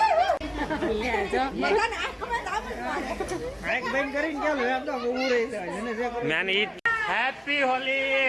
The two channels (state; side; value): identical; both; correlation 1.00